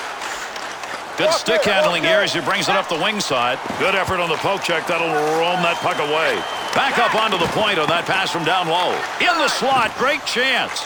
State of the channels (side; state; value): both; identical; correlation 1.00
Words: Good stick handling here as he brings it up the wing side. Good effort on the poke check. That'll roam that puck away. Back up onto the point on that pass from down low. In the slot. Great chance.